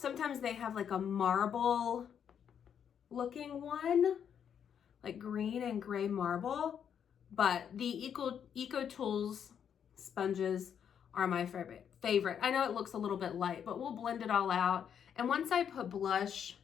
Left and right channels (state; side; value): quieter; right; 8.2 dB